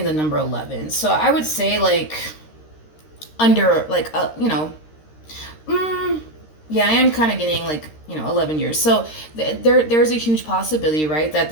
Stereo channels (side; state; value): right; late; 13 ms